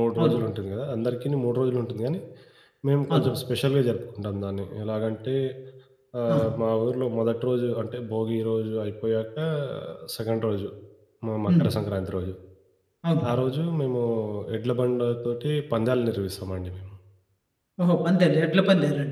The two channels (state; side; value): identical; both; correlation 1.00